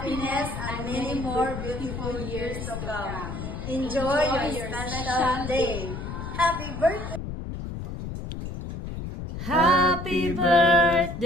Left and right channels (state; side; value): noise; left; rumble, 7 dB below the sound